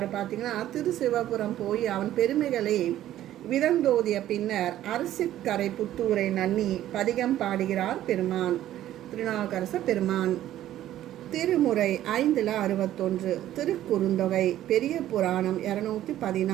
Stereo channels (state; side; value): quieter; left; 12.9 dB